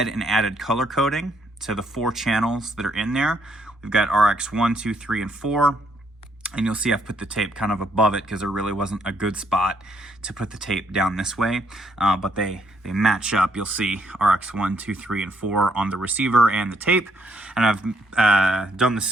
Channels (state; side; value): normal; both; correlation 0.72